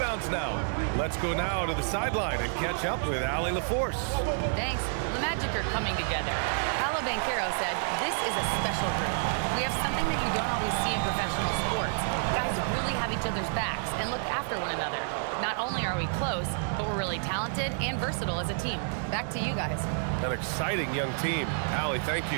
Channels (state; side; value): silent; left; 58 dB below the other